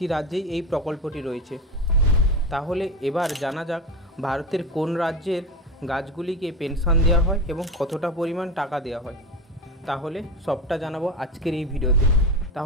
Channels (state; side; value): normal; both; correlation 0.23